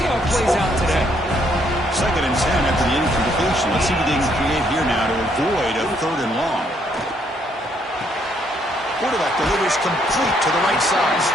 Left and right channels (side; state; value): both; normal; correlation 0.70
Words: how it plays out today. 2nd and 10 after the incompletion. Let's see what they can create here now to avoid a 3rd and long. Quarterback delivers complete to the right side.